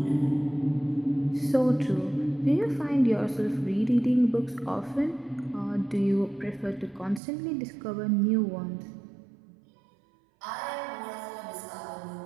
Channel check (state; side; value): drops out; left; at 7.2 s